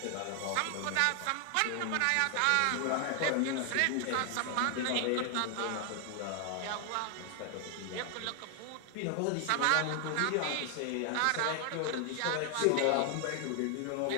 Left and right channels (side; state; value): both; different; correlation 0.00